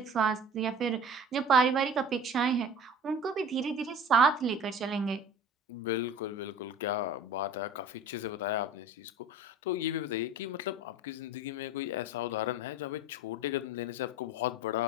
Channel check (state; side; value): normal; both; correlation 0.40